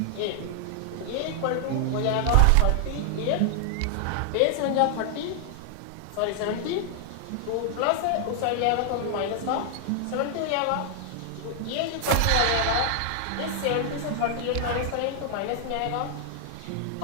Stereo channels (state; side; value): different; both; correlation 0.00